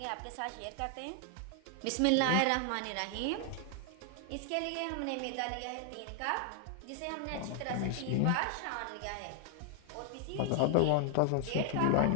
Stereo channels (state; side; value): different; both; correlation 0.00